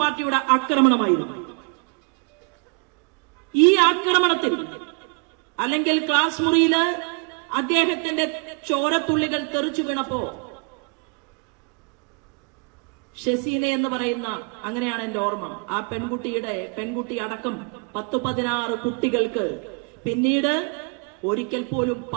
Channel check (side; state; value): left; quieter; 38.0 dB